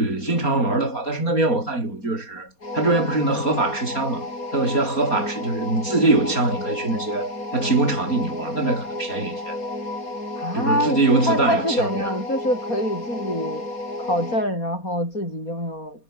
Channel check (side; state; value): right; late; 4.2 ms